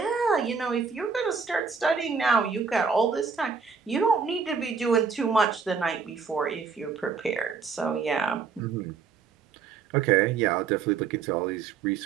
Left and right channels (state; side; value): quieter; left; 5.6 dB